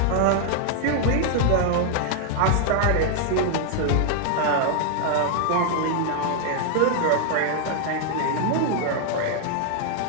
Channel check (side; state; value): both; different; correlation 0.00